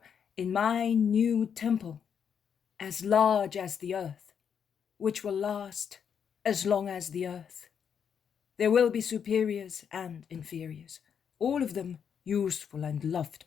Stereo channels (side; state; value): right; quieter; 7.5 dB